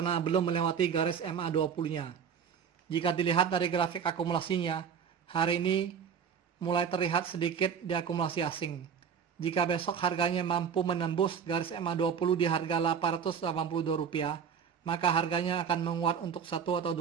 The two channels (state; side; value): quieter; left; 7.2 dB